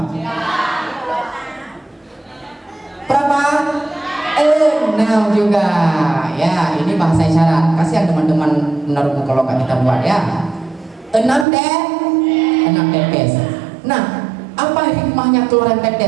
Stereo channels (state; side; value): drops out; left; at 11.5 s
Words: Berapa? 6 juga. Ya, ini bahasa isyarat. Kasihan teman-teman menaruh kalau nggak kita buat ya. 6 tetes. Nah, apa hikmahnya keluaran